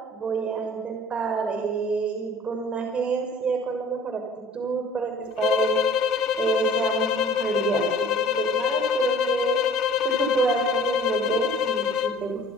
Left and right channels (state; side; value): normal; both; correlation 0.49